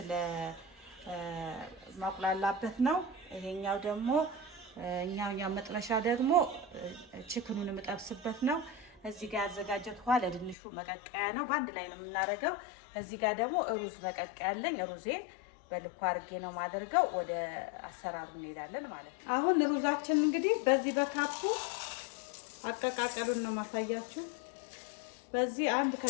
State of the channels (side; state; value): right; drops out; at 10.6 s